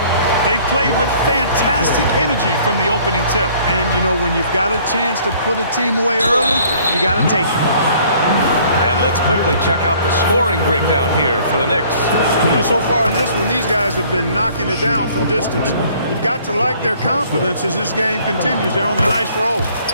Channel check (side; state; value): both; inverted; correlation -0.57